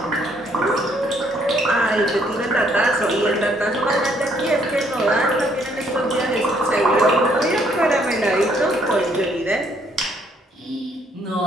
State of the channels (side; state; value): both; normal; correlation 0.67